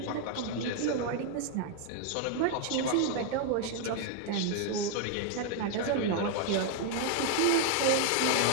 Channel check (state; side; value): different; both; correlation 0.01